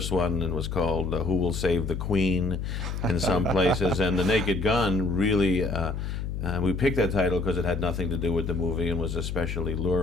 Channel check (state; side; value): noise; left; hum, 4 dB below the sound